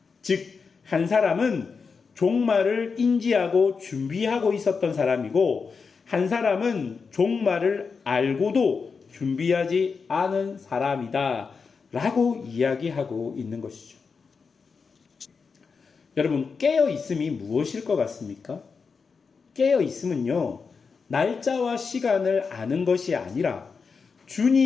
즉, 한 사람은 종말을 인지하고 준비하고 있었던 사람이고 한 사람은 종말을 알고도 준비하지 않은 사람이다 라고 이야기하고 있는 것이죠. 여러분, 깨어 있음이 무엇일 것 같습니까? 깨어 있음은요, 날짜와 시간을 아는 것이 아니라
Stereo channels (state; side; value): quieter; right; 5.2 dB